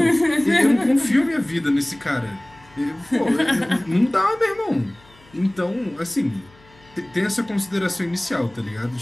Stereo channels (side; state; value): left; noise; hum, 28 dB below the sound